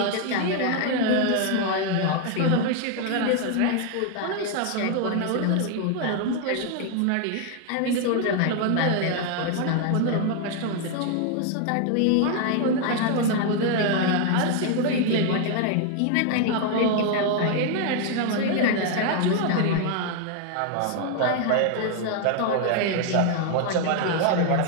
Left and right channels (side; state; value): both; different; correlation 0.00